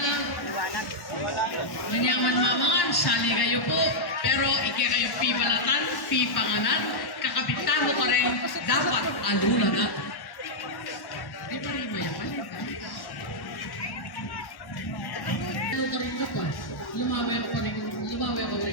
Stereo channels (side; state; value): right; late; 1.1 ms